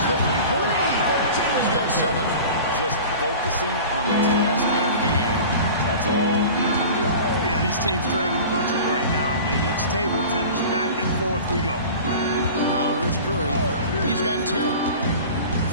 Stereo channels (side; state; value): both; inverted; correlation -0.38